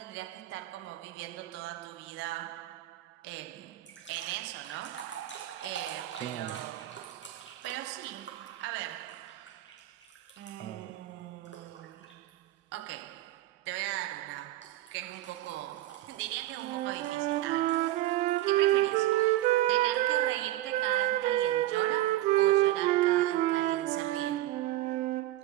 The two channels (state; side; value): quieter; left; 15.1 dB